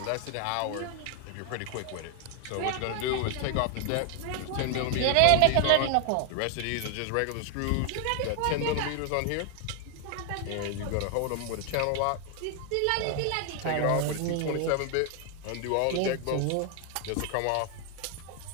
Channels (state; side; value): different; both; correlation 0.01